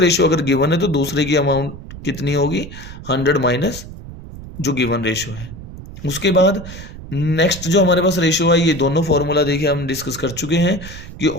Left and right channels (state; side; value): noise; right; rumble, 13 dB below the sound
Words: अगर गिवन है तो दूसरे की अमाउंट कितनी होगी, 100 माइनस जो गिवन रेशियो है। उसके बाद नेक्स्ट जो हमारे पास रेशियो है, ये दोनों फॉर्मूला देखिए हम डिस्कस कर चुके हैं कि